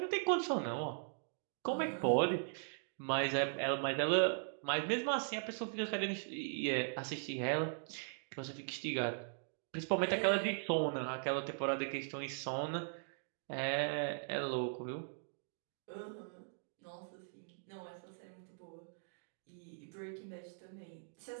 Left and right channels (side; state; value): left; silent; digital silence